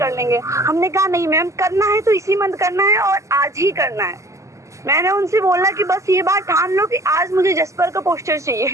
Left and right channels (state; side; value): late; left; 0.15 ms